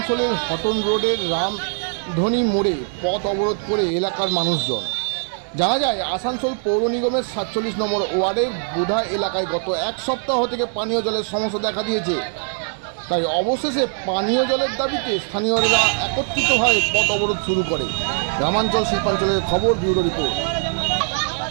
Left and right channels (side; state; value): left; silent; digital silence